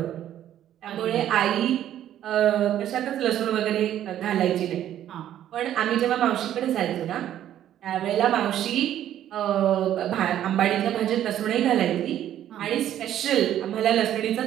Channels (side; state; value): left; quieter; 11.4 dB